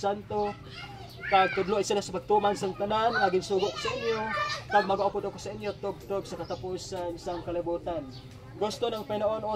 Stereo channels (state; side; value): identical; both; correlation 1.00